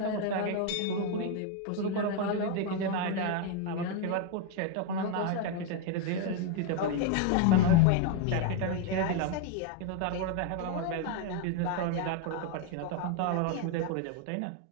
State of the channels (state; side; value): different; both; correlation 0.01